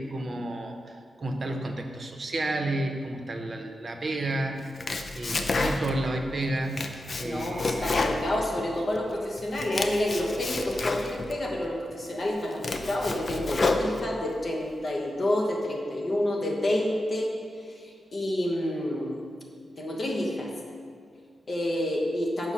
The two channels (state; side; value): normal; both; correlation 0.89